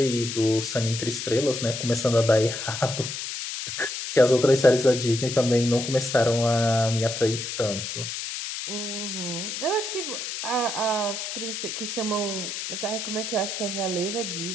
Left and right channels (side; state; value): left; noise; hiss, 6 dB below the sound